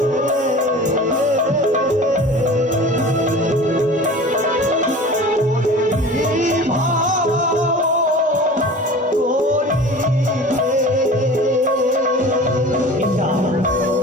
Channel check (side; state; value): both; normal; correlation 0.39